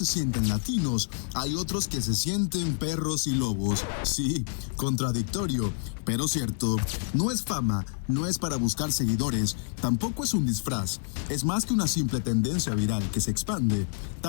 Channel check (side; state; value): right; silent; 59 dB below the other